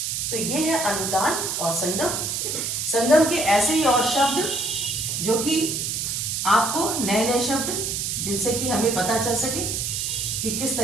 तो ये है अनुतान और संगम। संगम के ऐसे ही और शब्द जो कि आपको नए नए शब्द, जिनसे कि हमें पता चल सके कि किस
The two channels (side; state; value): right; noise; hiss, 1 dB below the sound